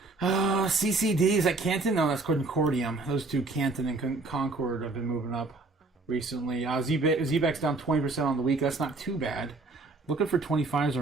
CCDs at Canton. No, that's Concordium. Those two, Canton and Concord, have been moving up recently. ZBEX down 20% on the week. That's not too bad. Looking for 25s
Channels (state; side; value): quieter; left; 3.4 dB